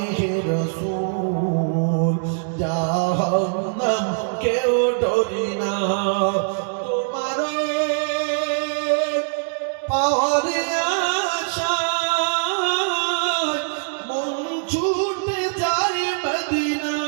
হে রাসূল জাহান্নাম কেউ ডরি না তোমার পাওয়ার আশায় মন ছুটে যায় মদিনা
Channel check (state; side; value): silent; left; 64 dB below the other